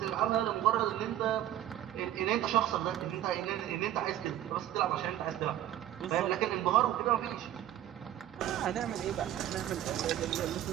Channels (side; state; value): left; quieter; 12.3 dB